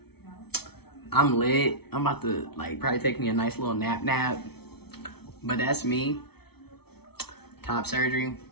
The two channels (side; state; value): right; late; 0.97 ms